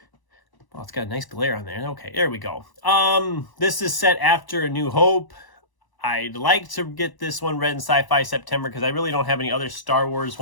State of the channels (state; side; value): late; right; 1.0 ms